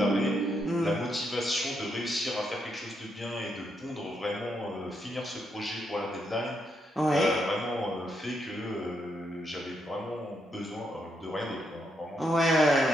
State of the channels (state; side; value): normal; both; correlation 0.79